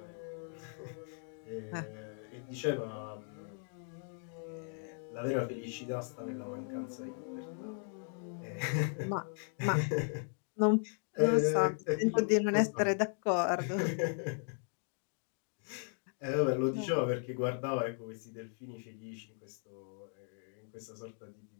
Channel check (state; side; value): silent; right; 53 dB below the other